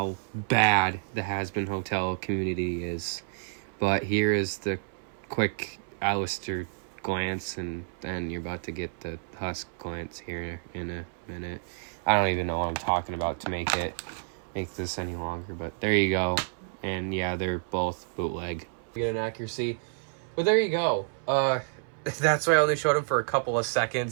bad the Has-Been Hotel community is. But here is the quick Alistair glance, and then you're about to get the Husk glance here in a minute. I don't even know what I'm talking about to make this any longer, but there you go. And yeah, they're both bootleg. Get an accuracy. But there you go. That's why I only showed him for a couple of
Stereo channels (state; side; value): silent; left; 58 dB below the other